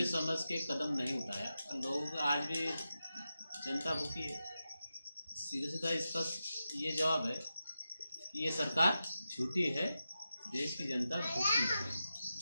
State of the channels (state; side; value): inverted; both; correlation -0.90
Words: समझ के कदम नहीं उठाया। लोग आज भी जनता भूखी है। सीधा सीधा इसका ये जवाब है कि ये सरकार झूठी है, देश की जनता भूखी है।